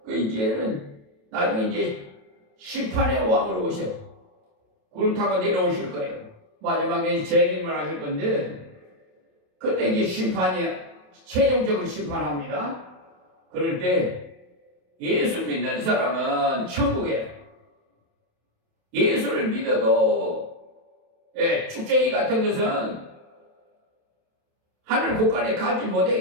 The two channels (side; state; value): left; late; 27 ms